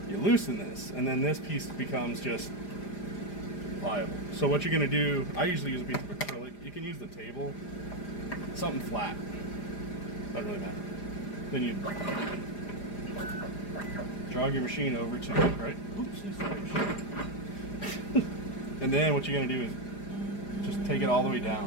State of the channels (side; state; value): right; late; 4.9 ms